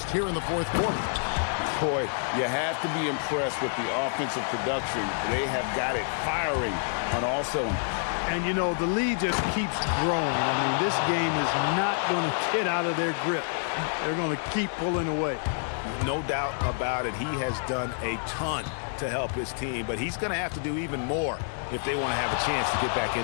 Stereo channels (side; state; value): right; silent; digital silence